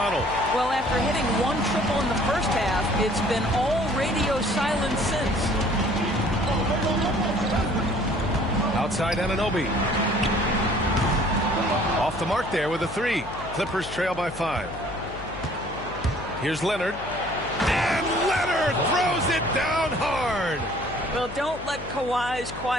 Well, after hitting 1 triple in the first half, it's been all radio silence since. Outside Anunoby. Off the mark there with a 3. Clippers trail by 5. Here's Leonard. And Leonard throws it down hard. Well, don't let Kawhi's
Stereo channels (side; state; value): left; noise; hum, 13 dB below the sound